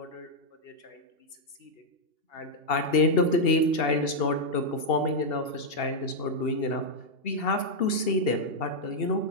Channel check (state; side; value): late; right; 2.8 ms